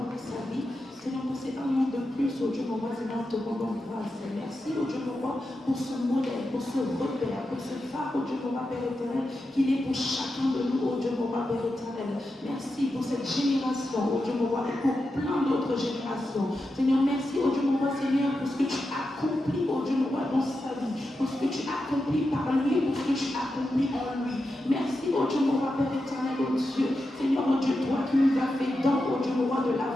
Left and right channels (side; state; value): both; normal; correlation 0.89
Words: pour sa vie. Seigneur, pour ces un an de plus, oh Dieu, mon roi, Seigneur, te rendons grâce. Merci, oh Dieu, mon roi, pour ce modèle, pour ce repère, pour ce phare, oh Dieu, mon roi, Père éternel, qu'il est pour chacun de nous, oh Dieu, mon roi, Père éternel. Merci pour cette génération, oh Dieu, mon roi, et pour plein d'autres générations. Seigneur, merci, oh Dieu, mon roi, Seigneur, pour ce que tu accomplis, oh Dieu, mon roi, dans sa vie, pour ce que tu accomplis par lui, pour ce que tu accomplis en lui. Merci, oh Dieu, mon roi, Père éternel, oh Dieu. Seigneur, oh Dieu, toi qui nous as fait don, oh Dieu, mon roi, de